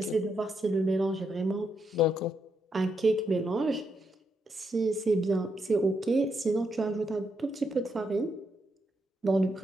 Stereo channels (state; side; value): normal; both; correlation 0.80